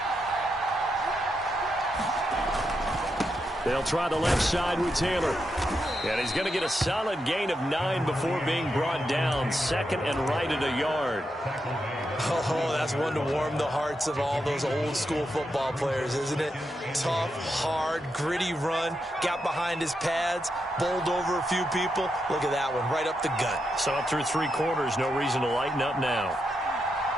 They'll try the left side with Taylor. And he's going to get a solid gain of 9 before being brought down. 2nd and right at a yard. Oh, that's one to warm the hearts of all those old school football players, isn't it? Tough, hard, gritty run. Got behind his pads, bowled over a few people. Look at that one, right up the gut. So up through 3 quarters, no reason to lighten up now.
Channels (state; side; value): normal; both; correlation 0.84